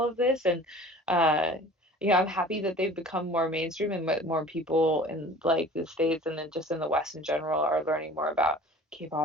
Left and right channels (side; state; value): both; normal; correlation 0.44